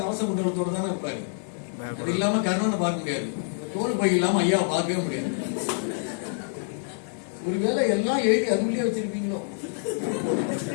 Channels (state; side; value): silent; right; digital silence